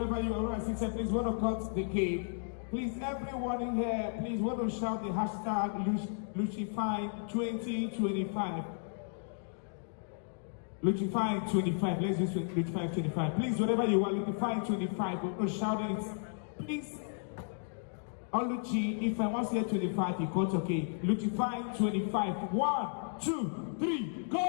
you are, sister, please want to cut the cake. Please, everyone in here, please want to shout the hashtag Luchify2025. Luchify25. Let's use Luchify25. Please, wherever you are, Luchify25. We're going to shout it. Please, Oluchi, if I want to say 25, you cut okay. Luchify25. 1, 2, 3,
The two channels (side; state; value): right; silent; digital silence